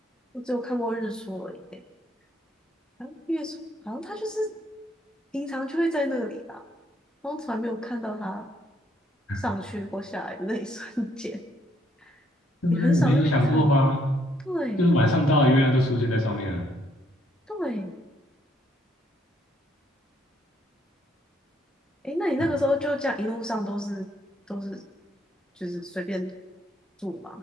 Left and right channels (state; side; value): normal; both; correlation 0.70